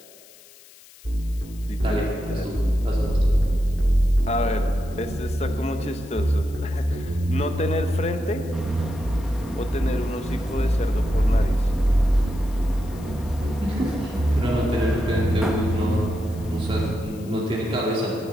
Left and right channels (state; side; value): noise; left; hiss, 23 dB below the sound